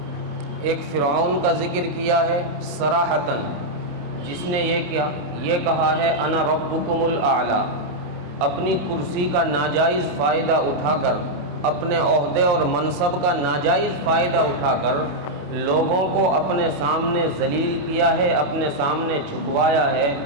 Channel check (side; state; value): left; late; 27 ms